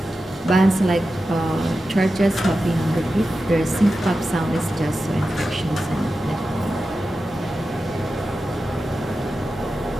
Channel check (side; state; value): both; normal; correlation 0.92